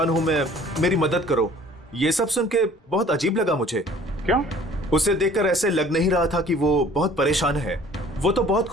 हूँ मैं, मेरी मदद करो। ये सब सुन के बहुत अजीब लगा मुझे। क्यों? उसे देखकर ऐसे लग नहीं रहा था कि वो बहुत परेशान है, वो तो बहुत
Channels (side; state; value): both; normal; correlation 0.52